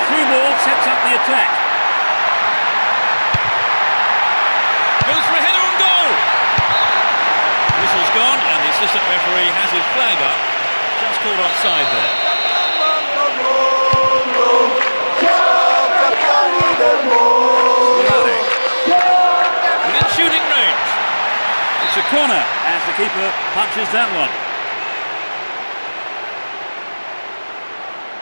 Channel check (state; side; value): inverted; both; correlation -1.00